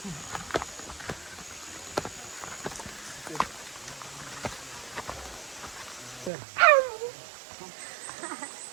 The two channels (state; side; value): drops out; left; at 6.3 s